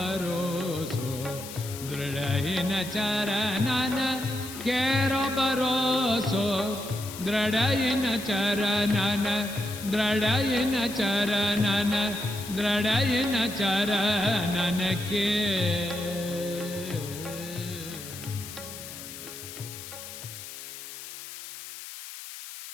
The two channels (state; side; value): noise; left; hiss, 12 dB below the sound